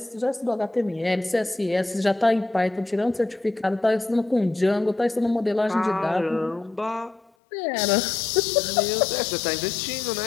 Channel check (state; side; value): drops out; right; at 7.3 s